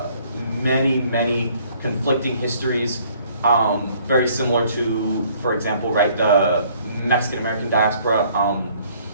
Many, many conflicting histories, very similar to, for example, right, the Mexican-American diaspora.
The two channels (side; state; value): both; inverted; correlation -0.60